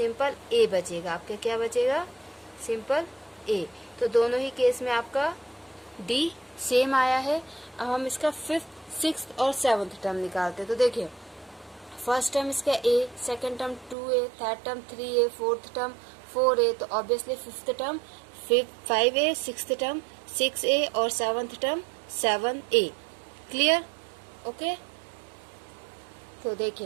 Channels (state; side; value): drops out; left; at 14.0 s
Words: A बचेगा। आपके क्या बचेगा? Simple A। तो दोनों ही केस में आपका D सेम आया है। अब हम इसका 5th, 6th और 7th टर्म निकालते हैं। तो देखिए, फर्स्ट टर्म इसका A, second term 2A, third term 3A, fourth term 4A, तो obviously 5th term 5A, 6th term 6A और 7th term 7A। Clear? Okay, तो